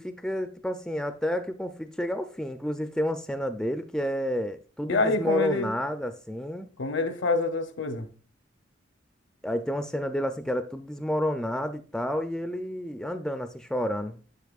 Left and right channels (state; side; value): normal; both; correlation 0.57